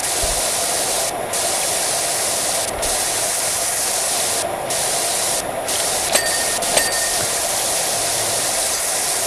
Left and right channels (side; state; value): both; identical; correlation 1.00